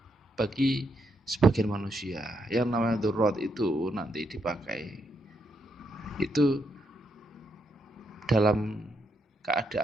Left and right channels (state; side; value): normal; both; correlation 0.79